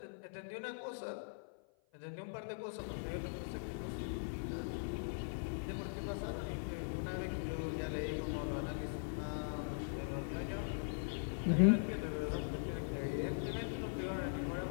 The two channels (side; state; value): right; silent; 50 dB below the other